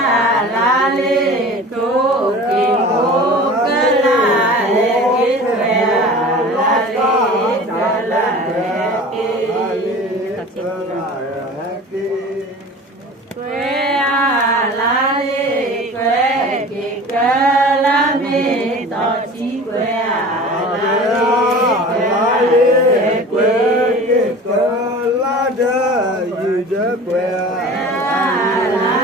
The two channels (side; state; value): both; normal; correlation 0.39